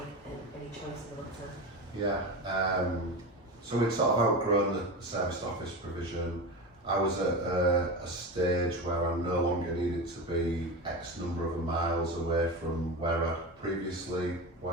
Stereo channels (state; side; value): normal; both; correlation 0.24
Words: choice in the matter. Yeah. So we'd sort of outgrown the serviced office provision. I was at a stage where I no longer needed to be X number of miles away from where I previously